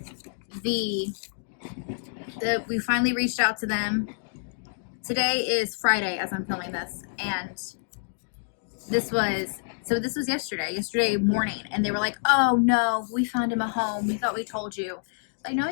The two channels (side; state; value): right; silent; digital silence